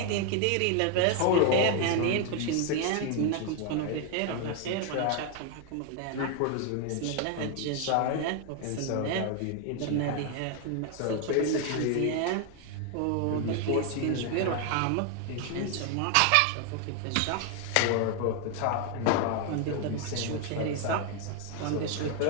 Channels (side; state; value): both; different; correlation 0.00